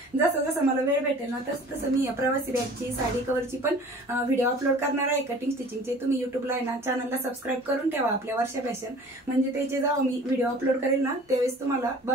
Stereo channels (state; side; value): normal; both; correlation 0.46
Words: जसं जसं मला वेळ भेटेल ना तसं तसं मी प्रवासी बॅगची, साडी कव्हरची पण व्हिडिओ अपलोड करणार आहे कटिंग स्टिचिंगचे। तुम्ही युट्यूबला आहे ना चॅनलला सबस्क्राईब करून ठेवा आपल्या वर्षा फॅशन, म्हणजे त्याचे जेव्हा मी व्हिडिओ अपलोड करेल ना त्यावेळेस तुम्हाला